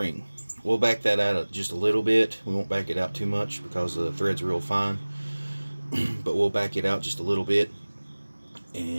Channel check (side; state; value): both; inverted; correlation -1.00